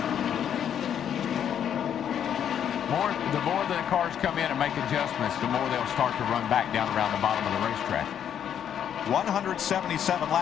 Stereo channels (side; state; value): right; quieter; 9.1 dB